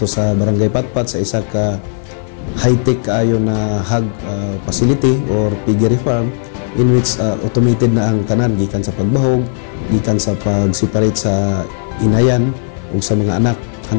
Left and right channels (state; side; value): silent; right; 55 dB below the other